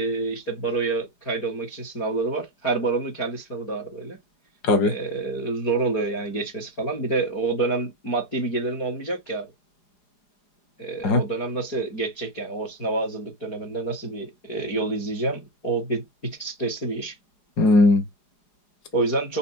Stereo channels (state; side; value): late; right; 4.9 ms